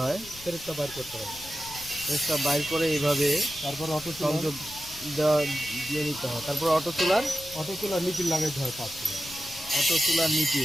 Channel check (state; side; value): noise; left; rumble, 19 dB below the sound